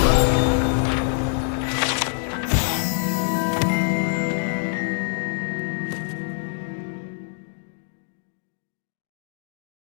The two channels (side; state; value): right; silent; digital silence